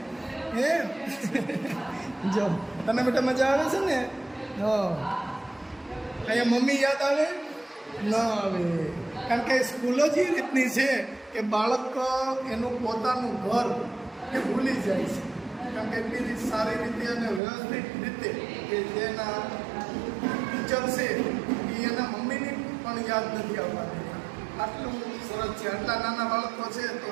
હે જો તને બેટા મજા આવે છે ને? અહીંયા મમ્મી યાદ આવે ન આવે, કારણ કે સ્કૂલો જ એ રીતની છે કે બાળક એનું પોતાનું ઘર એ ભૂલી જાય છે. કારણ કે એટલી સારી રીતે અને વ્યવસ્થિત રીતે કે જેના ટીચર છે એ એના મમ્મીની પણ યાદ નથી આવવાની. આટલું સરસ છે. આટલા નાના બાળકો છે તો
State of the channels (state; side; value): drops out; left; at 17.4 s